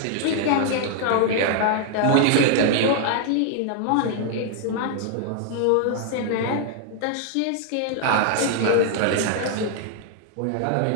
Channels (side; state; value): both; different; correlation 0.00